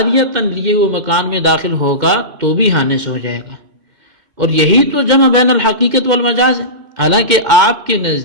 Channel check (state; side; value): late; left; 2.1 ms